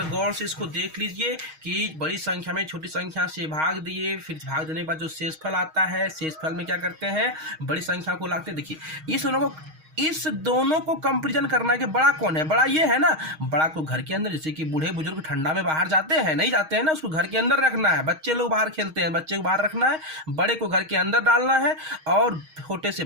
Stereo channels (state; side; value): late; left; 6.4 ms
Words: गौर से इसको देख लीजिए कि बड़ी संख्या में छोटी संख्या से भाग दिए, फिर भाग देने के बाद जो शेषफल आता है, शेषफल में क्या करते हैं, बड़ी संख्या को लाते हैं। देखिए इस दोनों को कंपेरिजन करना है कि बड़ा कौन है, बड़ा ये है ना। बड़ा को घर के अंदर, जैसे कि बूढ़े बुजुर्ग ठंडा में बाहर जाते हैं, नहीं जाते हैं ना, उसको घर के अंदर रखना है। बच्चे लोग बाहर खेलते हैं, बच्चे को बाहर रखना है, बड़े को घर के अंदर डालना है और छोटे से